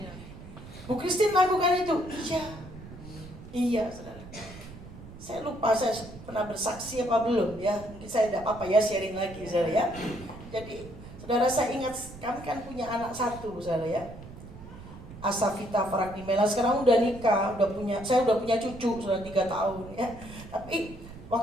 Bu Christine lakukan itu. Iya, saudara. Saya lupa saya pernah bersaksi apa belum ya. Mungkin saya tidak apa-apa ya sharing lagi, saudara ya. Jadi, saudara, saya ingat kami kan punya anak satu, saudara ya. Asafita Faraknimela sekarang udah nikah, saya udah punya cucu sudah 3 tahun ya. Tapi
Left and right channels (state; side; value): noise; right; rumble, 15 dB below the sound